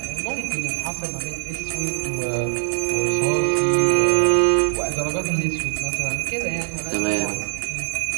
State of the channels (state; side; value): silent; left; digital silence